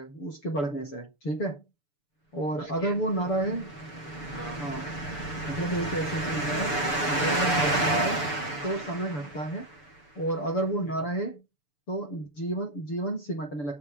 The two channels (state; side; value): late; right; 6.9 ms